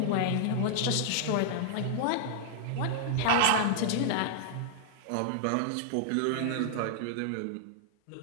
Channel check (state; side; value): different; both; correlation -0.01